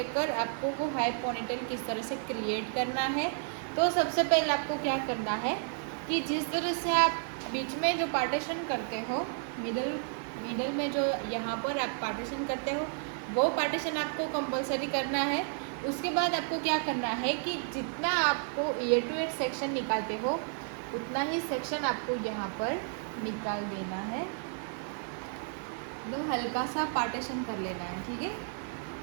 आपको वो हाई पोनीटेल किस तरह से क्रिएट करना है। तो सबसे पहले आपको क्या करना है कि जिस तरह से आप बीच में जो पार्टीशन करते हो, मिडल में जो यहाँ पर आप पार्टीशन करते हो वो पार्टीशन आपको कंपलसरी करना है। उसके बाद आपको क्या करना है कि जितना आपको ईयर टू ईयर सेक्शन निकालते हो उतना ही सेक्शन आपको यहाँ पर निकाल देना है। एकदम हल्का सा पार्टीशन कर लेना है, ठीक है।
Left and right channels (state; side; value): silent; left; 56 dB below the other